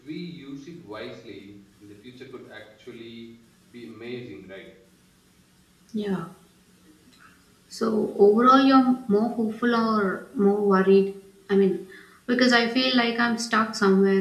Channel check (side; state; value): both; identical; correlation 1.00